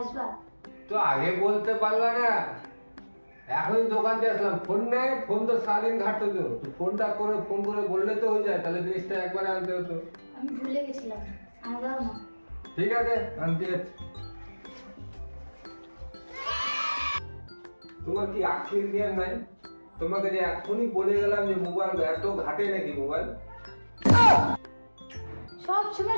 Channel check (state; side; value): inverted; both; correlation -1.00